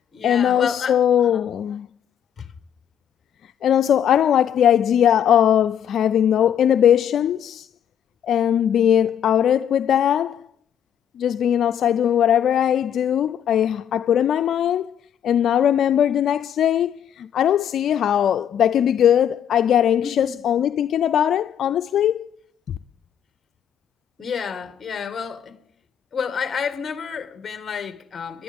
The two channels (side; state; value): right; quieter; 9.3 dB